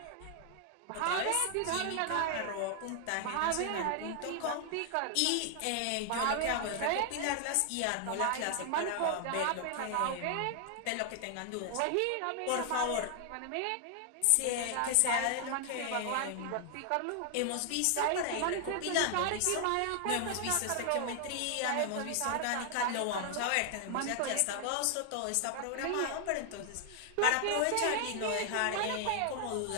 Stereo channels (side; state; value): both; different; correlation 0.00